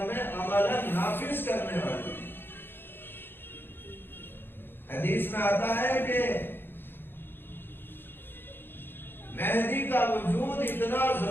میں عملاً نافذ کرنے والے ہیں۔ حدیث میں آتا ہے کہ مہدی کا وجود اتنا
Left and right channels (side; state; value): right; late; 0.10 ms